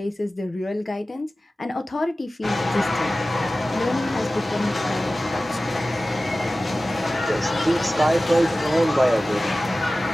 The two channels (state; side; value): normal; both; correlation 0.96